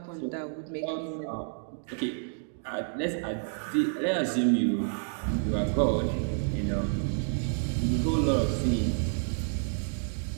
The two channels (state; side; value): silent; left; digital silence